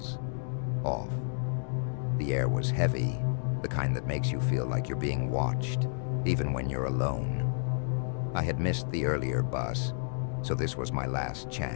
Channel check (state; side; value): silent; right; digital silence